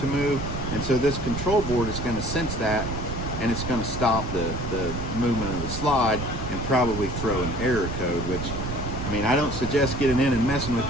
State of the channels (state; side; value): noise; right; rumble, 5 dB below the sound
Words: move. And so this control board is going to sense that, and it's going to stop the movement of the slide and probably throw an error code, which, I mean, I don't suggest getting in and messing with